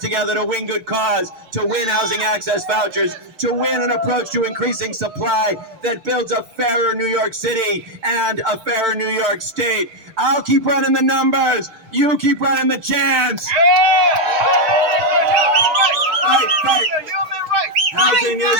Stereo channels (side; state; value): left; late; 6.1 ms